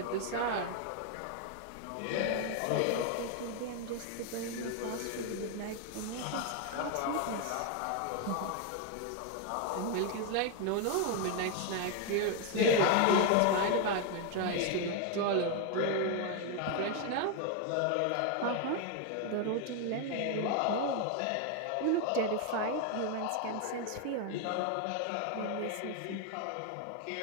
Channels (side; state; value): both; different; correlation 0.01